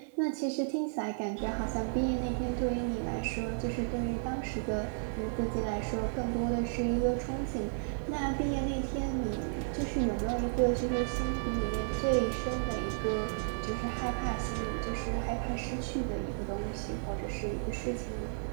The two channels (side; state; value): left; silent; 56 dB below the other